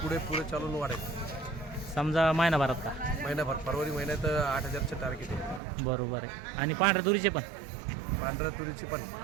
पुढे चालून वाढेल. समजा महिनाभरात का? महिनाभर, फरवरी महिन्यात 8000चे टार्गेट आहे. बरोबर आहे. आणि पांढऱ्या तुरीचे पण? पांढऱ्या तुरीची पण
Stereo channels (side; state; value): left; drops out; at 5.6 s